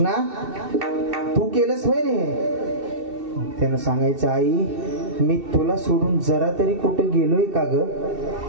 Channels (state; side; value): late; left; 2.7 ms